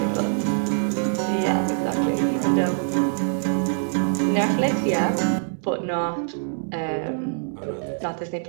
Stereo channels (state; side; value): silent; left; digital silence